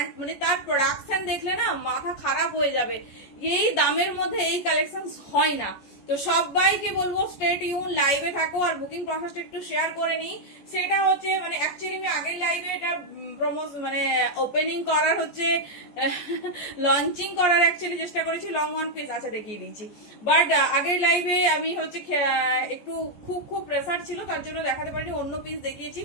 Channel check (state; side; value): late; right; 14 ms